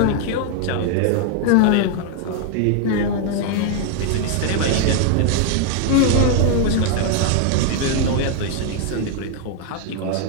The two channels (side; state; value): both; different; correlation 0.00